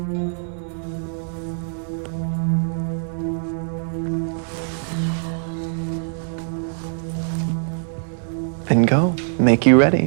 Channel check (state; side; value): silent; left; 64 dB below the other